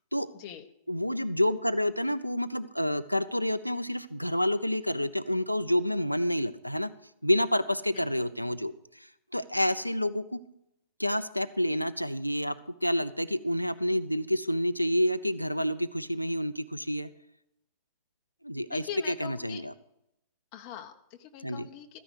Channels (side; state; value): both; inverted; correlation -0.95